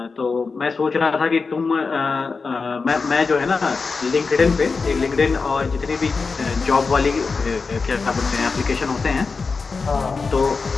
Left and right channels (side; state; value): right; quieter; 4.5 dB